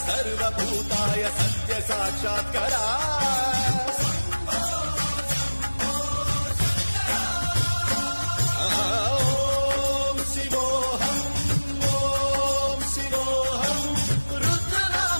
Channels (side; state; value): both; inverted; correlation -1.00